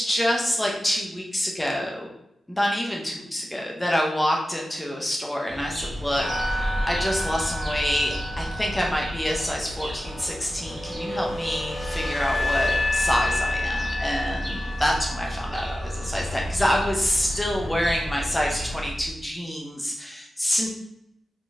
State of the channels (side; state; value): both; normal; correlation 0.94